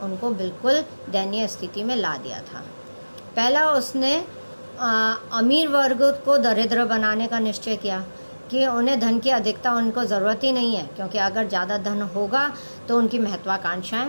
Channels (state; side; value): inverted; both; correlation -1.00